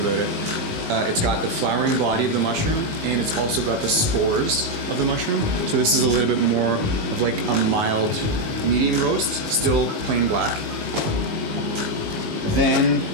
it. It's got the flowering body of the mushroom, and it's also got the spores of the mushroom. So this is a little bit more of like a mild medium roast, still plain black. Then,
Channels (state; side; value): late; left; 19 ms